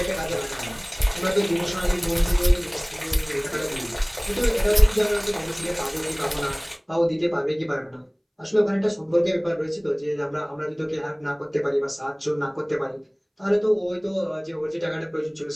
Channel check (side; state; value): both; identical; correlation 1.00